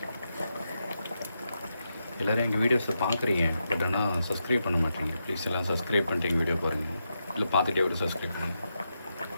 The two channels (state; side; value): inverted; both; correlation -0.85